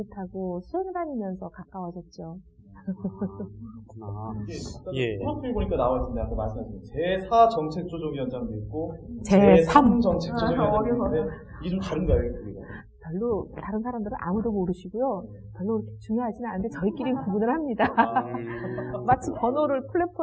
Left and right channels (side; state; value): both; identical; correlation 1.00